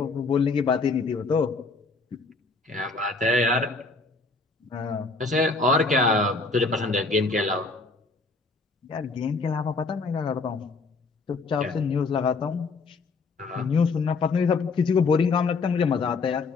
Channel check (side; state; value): right; quieter; 4.0 dB